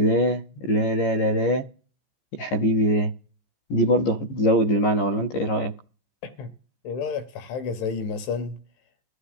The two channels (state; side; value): late; right; 15 ms